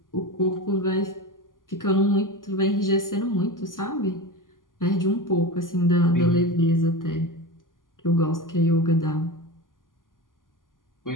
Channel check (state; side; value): late; right; 0.89 ms